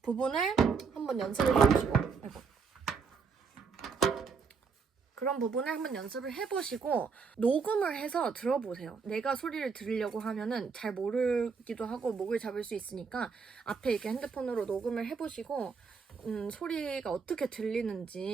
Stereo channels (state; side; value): quieter; left; 5.4 dB